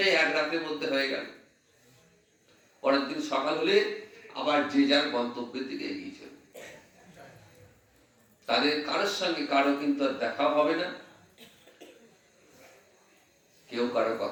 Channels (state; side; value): identical; both; correlation 1.00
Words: এক রাতের মধ্যে হয়ে গেল। পরের দিন সকাল হলে আবার যে যার গন্তব্যের দিকে এগিয়ে চলবে। তাদের কারোর সঙ্গে কারো কিন্তু আর দেখা হবে না, কেউ কারো